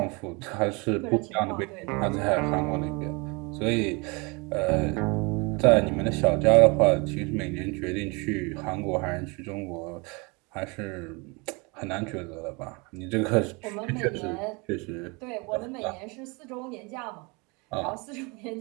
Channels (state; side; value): quieter; left; 28.8 dB